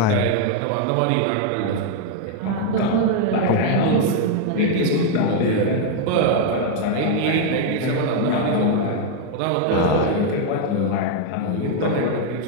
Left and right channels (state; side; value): different; both; correlation 0.00